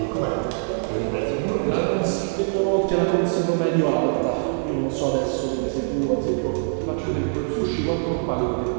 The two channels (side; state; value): left; silent; 63 dB below the other